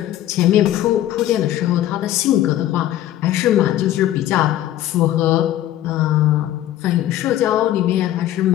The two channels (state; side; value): quieter; right; 13.1 dB